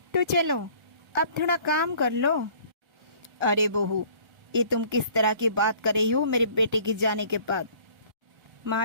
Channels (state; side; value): late; left; 1.3 ms